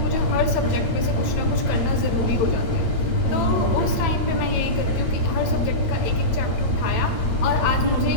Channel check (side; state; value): right; late; 9.0 ms